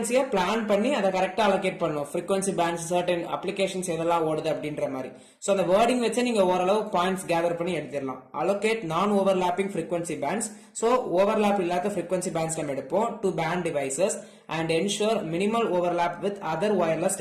பிளான் பண்ணி அதை கரெக்டா allocate பண்ணும். frequency bands certain applications எதெல்லாம் ஓடுது அப்படின்ற மாதிரி. so அந்த wording வச்சு நீங்க ஓரளவு பாயிண்ட்ஸ் கேதர் பண்ணி எடுத்துடலாம். allocate non overlapping frequency bands, so overlap இல்லாத frequency bands நம்ம எடுப்போம் to band devices and ensure minimal overlap with other wireless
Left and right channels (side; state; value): both; identical; correlation 1.00